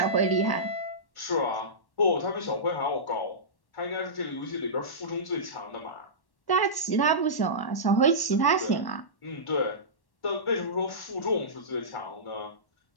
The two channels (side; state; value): right; late; 1.1 ms